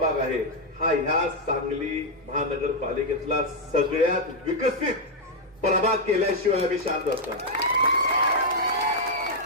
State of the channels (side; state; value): both; normal; correlation -0.02